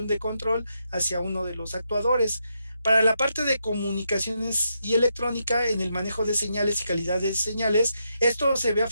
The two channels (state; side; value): inverted; both; correlation -0.82